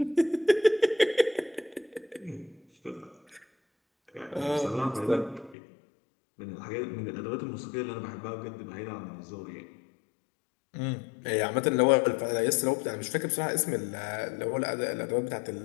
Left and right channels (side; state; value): right; drops out; at 5.6 s